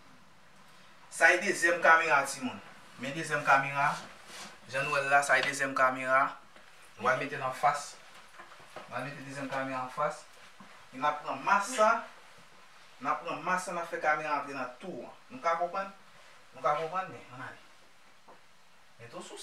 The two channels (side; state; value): both; identical; correlation 1.00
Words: Ça est deuxième caméra, Timon. Mais deuxième caméra. Jean-Noël là, ça est deuxième caméra. On va le mettre en face. On va mettre deuxième caméra en face. On a pris masse ça. On a pris masse ça, on a fait caméra entrer dans tout. Nous comprenons? Nous comprenons, mais on a dit. Mais tout sous